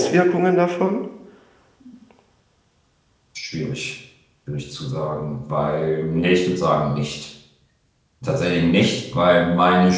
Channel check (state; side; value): identical; both; correlation 1.00